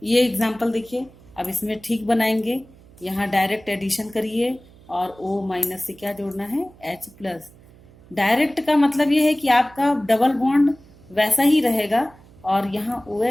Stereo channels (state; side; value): noise; right; hum, 25 dB below the sound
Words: ये एग्जाम्पल देखिए, अब इसमें ठीक बनाएंगे। यहाँ डायरेक्ट एडिशन करिए और O माइनस से क्या जोड़ना है, H प्लस। डायरेक्ट का मतलब ये है कि आपका डबल बॉन्ड वैसा ही रहेगा और यहाँ